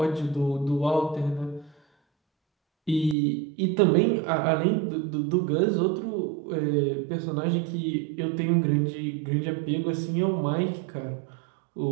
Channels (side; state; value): left; drops out; at 3.2 s